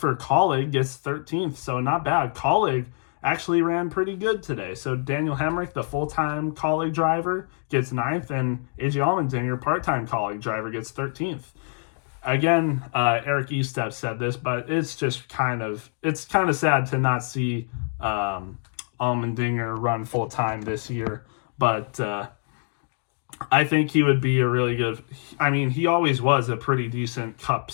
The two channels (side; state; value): right; silent; digital silence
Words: Colleague, gets 13th, so not bad. Colleague actually ran pretty good today. So Daniel Hemrick, the full-time Colleague driver, gets 9th, and AJ Allmendinger, part-time Colleague driver, gets 13th. Again, Eric Estep said this, but it's just kind of sad to not see Allmendinger run full-time this year. But I think he would be a really good... I mean, he always was a pretty decent Cup